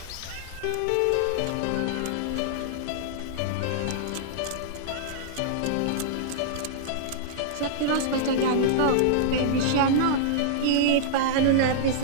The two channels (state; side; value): different; both; correlation -0.02